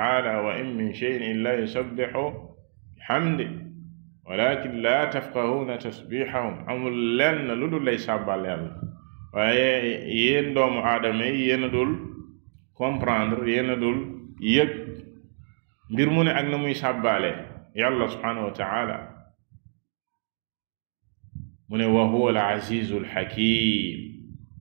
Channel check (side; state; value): left; silent; 60 dB below the other